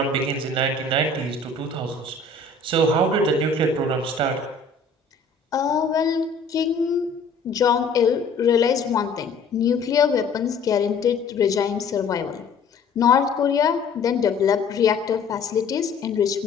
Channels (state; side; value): quieter; right; 4.0 dB